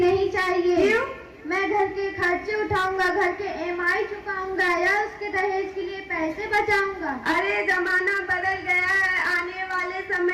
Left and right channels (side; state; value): both; identical; correlation 1.00